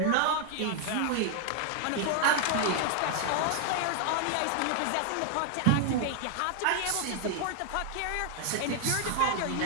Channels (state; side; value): different; both; correlation 0.00